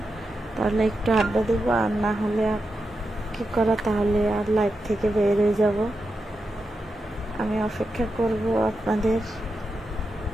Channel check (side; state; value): both; normal; correlation 0.88